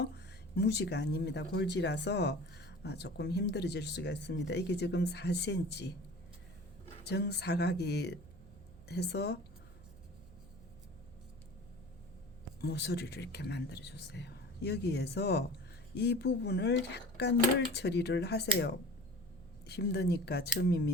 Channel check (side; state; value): right; noise; hum, 20 dB below the sound